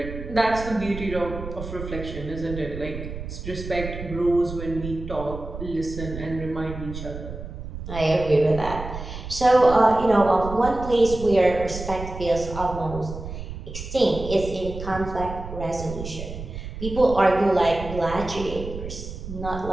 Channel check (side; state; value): right; noise; rumble, 9 dB below the sound